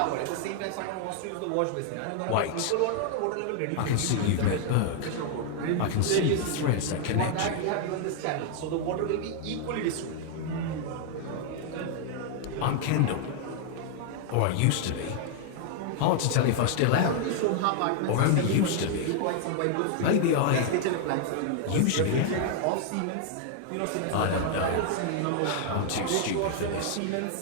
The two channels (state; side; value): different; both; correlation 0.00